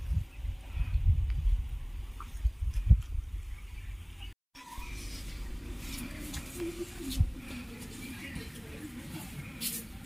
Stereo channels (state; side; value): identical; both; correlation 1.00